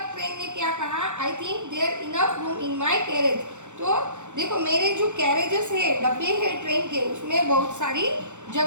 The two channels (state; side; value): late; left; 0.84 ms